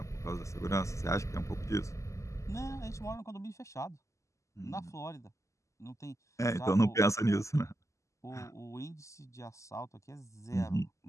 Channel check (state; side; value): late; right; 0.15 ms